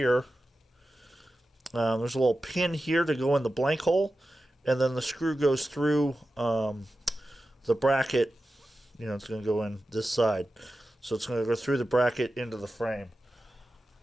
there's a little pin here to go in the blank hole. And then the screw goes through the bracket. You know, it's going to go in this side. So it's going to go through the bracket into the frame.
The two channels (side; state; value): both; normal; correlation 0.93